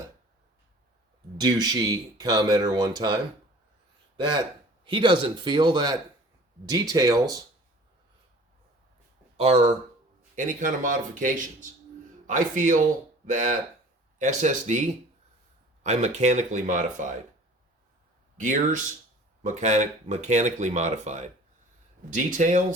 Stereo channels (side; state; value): both; normal; correlation 0.46